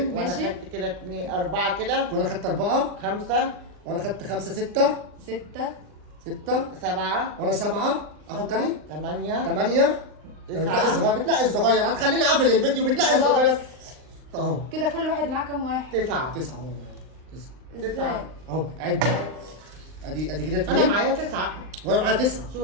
وانا ماشي. خدت كده 2 4 كده وانا خدت 4 5 وانا خدت 5 6 6 7 وانا 7. اخد تاني 8 8. بتنقي الصغير هتخليني اقفل الفيديو. بتنقي خلاص. الصغير اهو. كده كل واحد معاه كام واحد؟ 9 9 اهو. 9 ازاي؟ اهو. عد. ادي كده انا 2 معايا 9. وانا معايا 9.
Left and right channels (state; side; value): late; left; 39 ms